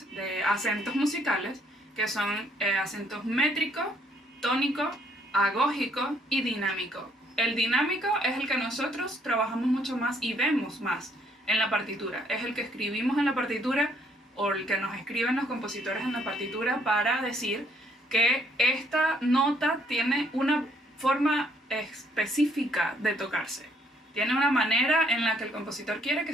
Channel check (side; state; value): both; normal; correlation 0.67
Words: de acentos musicales, que son acentos métrico, tónico, agógico y dinámico. El dinámico es el que nosotros trabajamos mucho más y vemos más en la partitura. Es el que escribimos en la partitura o el que nos escriben los compositores en la partitura para decir que esta nota tiene una forma específica de tocarse. Tiene una manera en la que el compositor quiere que